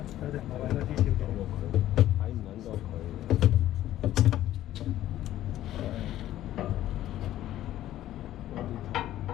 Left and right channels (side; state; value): right; quieter; 13.3 dB